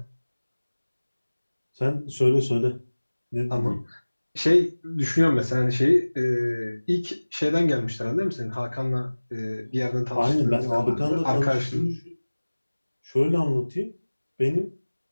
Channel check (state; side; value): inverted; both; correlation -1.00